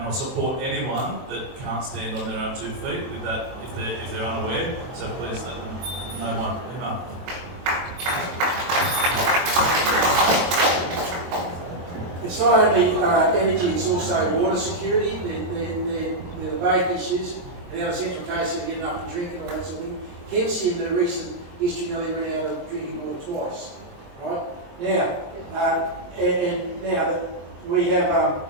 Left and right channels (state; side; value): late; left; 23 ms